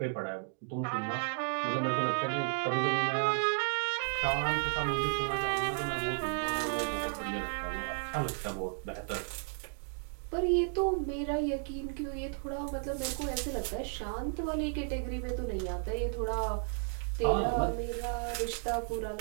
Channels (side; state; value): left; silent; 55 dB below the other